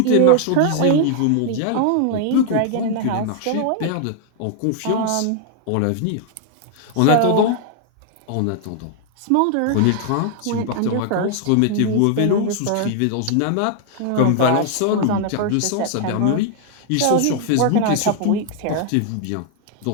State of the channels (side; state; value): both; different; correlation 0.00